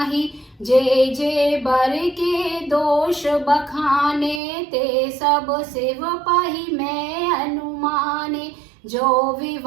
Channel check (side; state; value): left; drops out; at 4.4 s